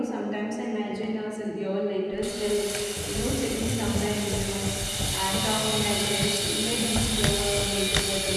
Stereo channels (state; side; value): identical; both; correlation 1.00